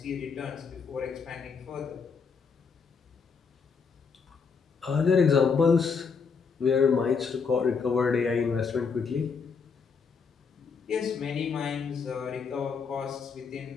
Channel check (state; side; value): quieter; right; 5.5 dB